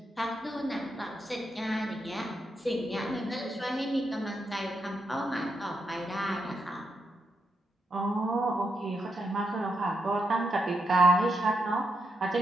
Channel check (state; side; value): normal; both; correlation 0.82